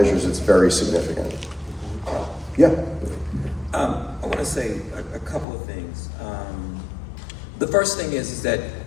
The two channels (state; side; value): drops out; right; at 5.5 s